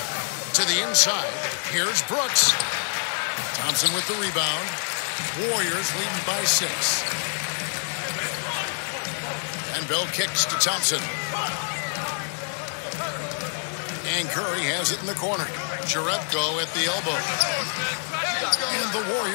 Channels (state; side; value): silent; right; 61 dB below the other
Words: To the inside, here's Brooks. Thompson with the rebound. Warriors leading by 6. And Bell kicks to Thompson. And Curry has it in the corner. Jerebko at the elbow. And the